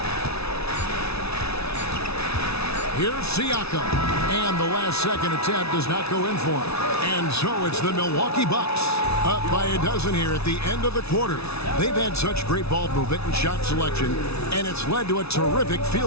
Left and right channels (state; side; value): late; right; 0.79 ms